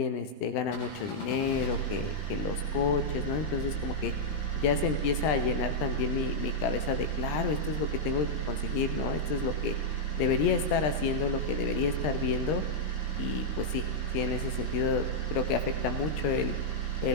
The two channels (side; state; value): right; late; 20 ms